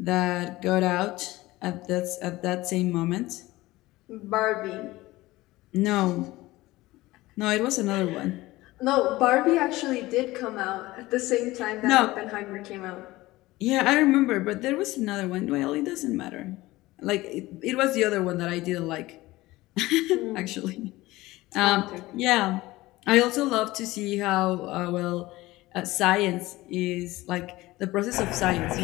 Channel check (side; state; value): right; quieter; 18.7 dB